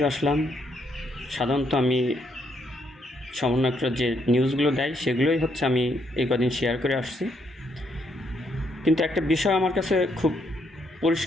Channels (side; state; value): both; normal; correlation 0.74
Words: আসলাম। সাধারণত আমি সমন্বয়করা যে নিউজগুলো দেয় সেগুলোই হচ্ছে আমি এই কদিন শেয়ার করে আসছি। কিন্তু একটা বিষয় আমার কাছে খুব